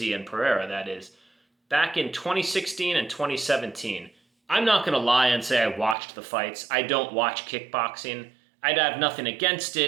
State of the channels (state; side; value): drops out; left; at 6.0 s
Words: and Pereira, that is, back in 2016 and 2017. I'm not going to lie and say I watched the fights. I don't watch kickboxing. I'd have nothing against